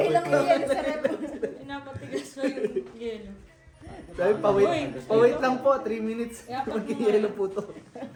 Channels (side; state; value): both; identical; correlation 1.00